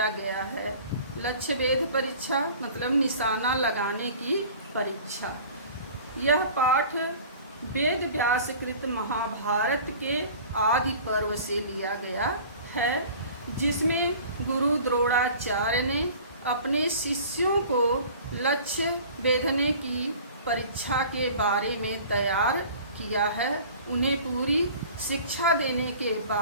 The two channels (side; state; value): both; inverted; correlation -0.45